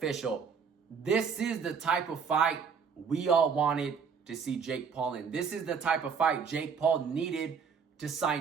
This is the type of fight we all wanted to see Jake Paul in. This is the type of fight Jake Paul needed to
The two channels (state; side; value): quieter; left; 6.2 dB